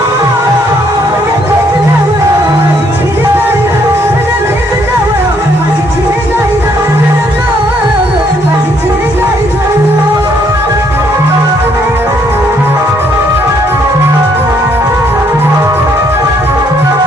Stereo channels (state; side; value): normal; both; correlation 0.68